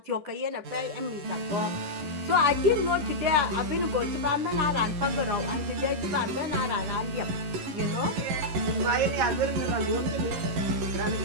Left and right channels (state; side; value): late; left; 11 ms